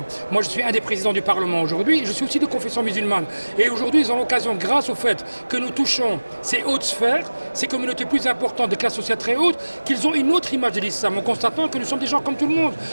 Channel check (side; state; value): both; inverted; correlation -1.00